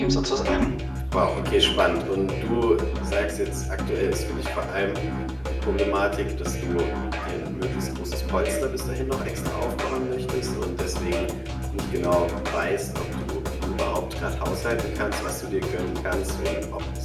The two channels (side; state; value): both; identical; correlation 1.00